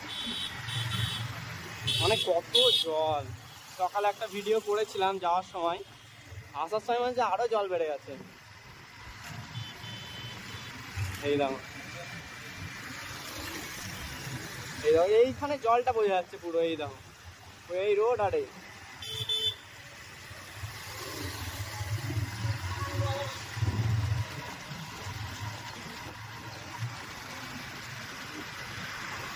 মানে কত জল। সকালে একটা ভিডিও করেছিলাম যাওয়ার সময়, আসার সময় মানে আরো জল বেড়ে গেছে। এই দেখো এই দেখো এইখানে জলটা বোঝা যাচ্ছে পুরো। এই দেখো এই রোড, আর এই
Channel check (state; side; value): identical; both; correlation 1.00